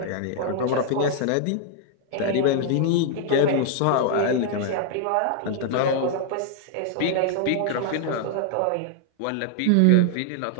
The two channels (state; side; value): different; both; correlation 0.00